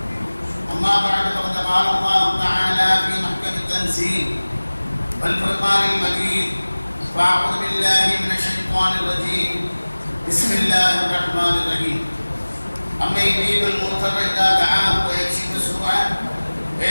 أما بعد فقد قال الله تعالى في محكم التنزيل والفرقان المجيد: فأعوذ بالله من الشيطان الرجيم. بسم الله الرحمن الرحيم. أما يجيب المضطر إذا دعاه ويكشف السوء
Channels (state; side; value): inverted; both; correlation -1.00